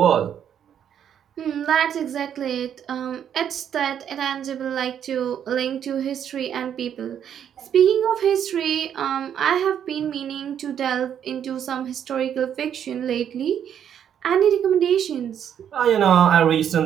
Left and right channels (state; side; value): quieter; left; 9.1 dB